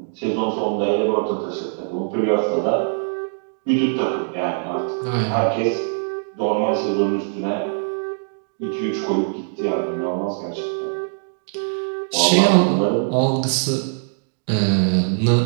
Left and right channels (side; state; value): left; silent; digital silence